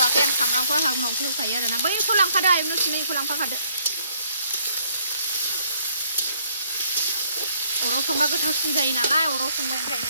आं सामब्रामखौ आंहा उनावसो होखायो आरोना बैखौ लांफादो आयमोन सुनैखौ लांफाखादो अराव संबा गोथावसिन जायो नालाय अराव संबाय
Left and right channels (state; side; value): inverted; both; correlation -0.66